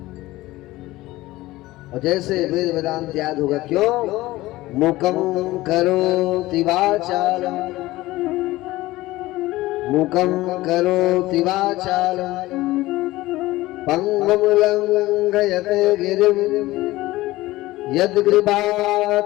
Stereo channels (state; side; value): quieter; right; 18.1 dB